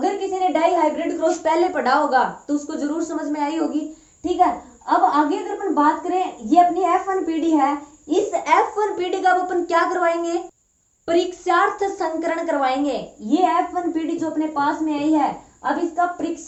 किसी ने डाई हाइब्रिड क्रॉस पहले पढ़ा होगा तो उसको जरूर समझ में आई होगी। ठीक है, अब आगे अगर अपन बात करें, ये अपनी F1 पीढ़ी है। इस F1 पीढ़ी का अपन क्या करवाएंगे, परीक्षार्थ संकरण करवाएंगे। ये F1 पीढ़ी जो अपने पास में आई है, अब इसका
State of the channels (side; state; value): both; identical; correlation 1.00